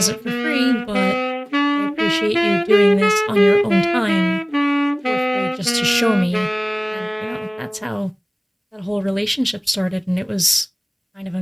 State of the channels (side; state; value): both; identical; correlation 1.00